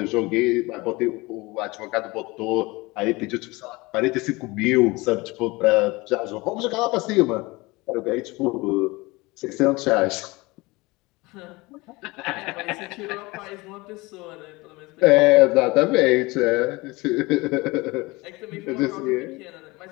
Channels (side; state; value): right; quieter; 23.1 dB